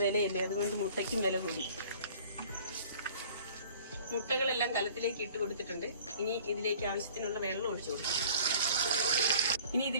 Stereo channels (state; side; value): inverted; both; correlation -0.50